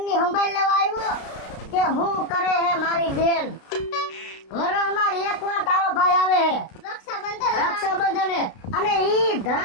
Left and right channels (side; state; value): right; late; 32 ms